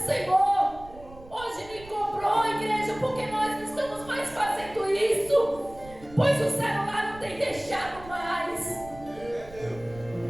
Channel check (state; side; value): noise; right; rumble, 19 dB below the sound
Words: Senhor hoje me cobrou, igreja, porque nós não estamos mais fazendo isso, pois o celular não tem deixado mais.